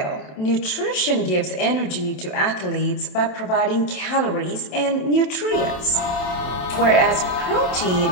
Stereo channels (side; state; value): right; late; 27 ms